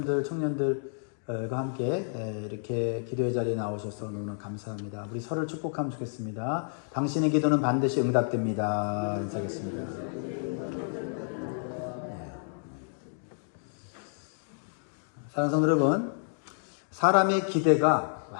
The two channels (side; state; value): right; silent; digital silence